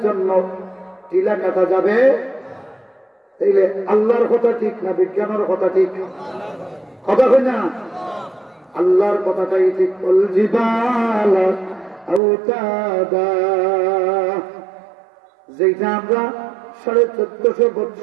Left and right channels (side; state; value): left; drops out; at 12.2 s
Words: জন্য টিলা কাটা যাবে। তাইলে আল্লাহর কথা ঠিক না বিজ্ঞানের কথা ঠিক? কথা কই না? আল্লাহর কথাটাই ঠিক। ওয়াল জিবালা আওতাদা, যেটা আমরা 1450